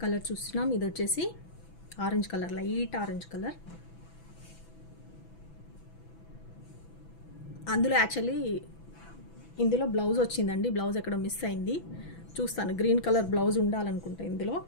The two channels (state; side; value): late; right; 6.0 ms